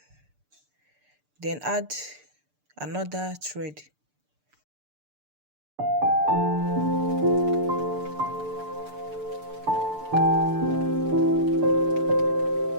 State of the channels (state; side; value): late; left; 6.8 ms